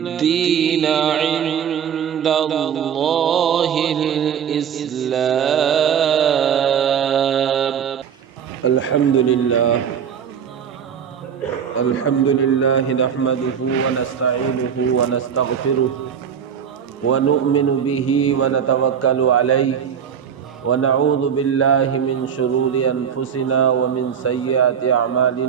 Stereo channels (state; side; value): quieter; left; 7.9 dB